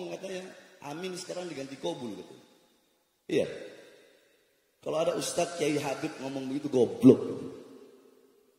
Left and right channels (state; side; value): identical; both; correlation 1.00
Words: katanya amin sekarang diganti kobul gitu. Iya. Kalau ada Ustadz Kiai Habib ngomong begitu goblok.